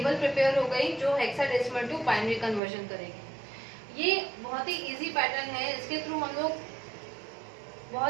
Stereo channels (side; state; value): left; drops out; at 2.6 s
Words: प्रिपेयर हो गई जो हेक्साडेसिमल टू बाइनरी कन्वर्जन करेगी। ये बहुत ही इजी पैटर्न है, इसके थ्रू हम लोग